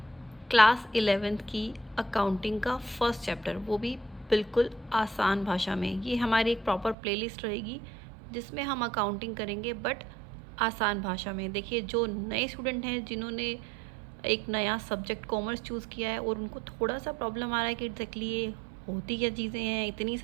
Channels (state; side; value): drops out; left; at 7.0 s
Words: क्लास 11th की अकाउंटिंग का फर्स्ट चैप्टर, वो भी बिल्कुल आसान भाषा में। ये हमारी एक प्रॉपर प्लेलिस्ट रहेगी जिसमें हम अकाउंटिंग करेंगे बट आसान भाषा में। देखिए, जो नए स्टूडेंट हैं जिन्होंने एक नया सब्जेक्ट कॉमर्स चूज़ किया है और उनको थोड़ा सा प्रॉब्लम आ रहा है कि एग्जैक्टली ये होती क्या चीज़ें हैं, इतनी